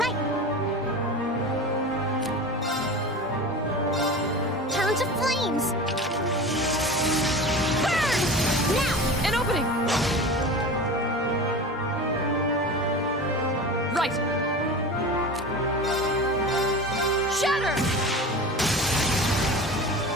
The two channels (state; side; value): normal; both; correlation 0.32